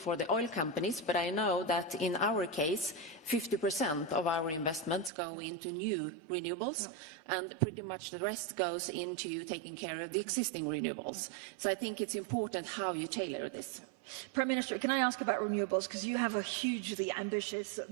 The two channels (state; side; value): drops out; left; at 5.1 s